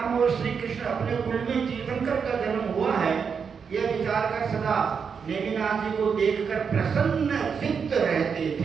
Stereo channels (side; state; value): left; quieter; 6.3 dB